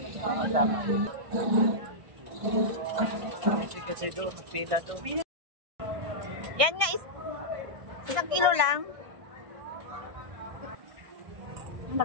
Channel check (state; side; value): late; left; 1.4 ms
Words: Kasi doon, pila doon. Yan nga, 1 kilo lang.